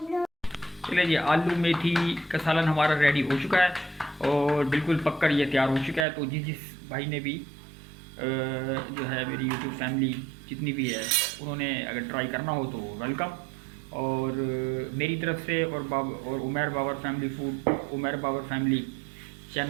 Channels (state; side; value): drops out; left; at 6.1 s